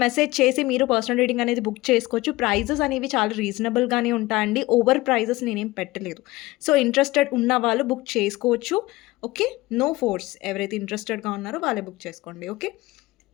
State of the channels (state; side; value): quieter; right; 19.6 dB